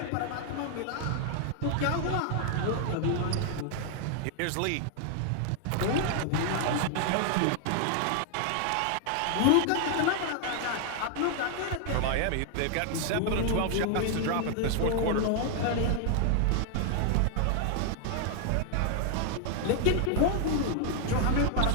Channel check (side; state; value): both; different; correlation 0.00